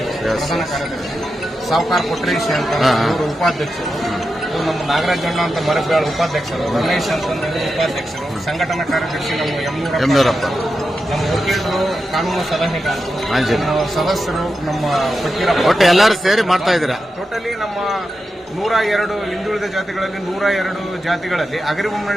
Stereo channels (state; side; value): normal; both; correlation 0.89